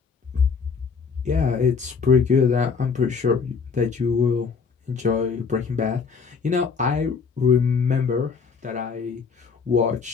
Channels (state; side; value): quieter; right; 5.4 dB